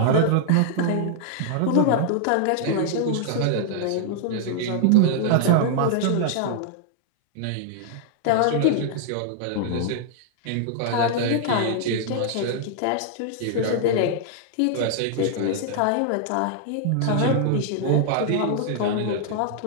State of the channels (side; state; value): both; different; correlation -0.01